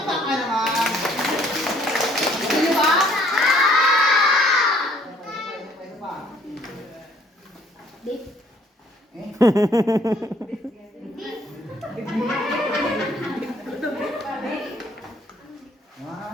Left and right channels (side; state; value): both; normal; correlation 0.61